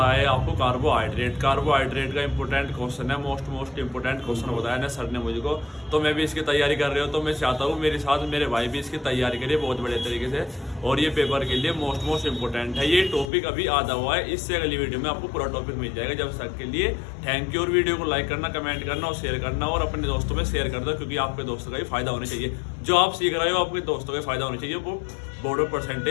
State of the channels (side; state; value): right; drops out; at 13.3 s